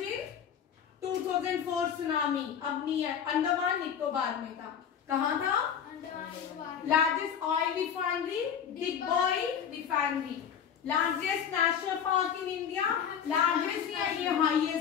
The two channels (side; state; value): right; quieter; 8.1 dB